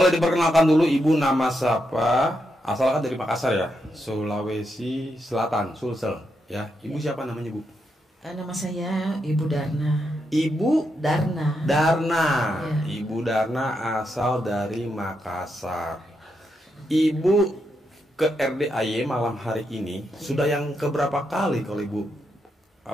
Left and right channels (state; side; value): normal; both; correlation 0.83